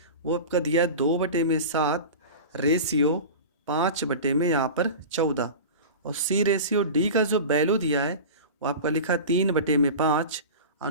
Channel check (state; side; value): inverted; both; correlation -0.31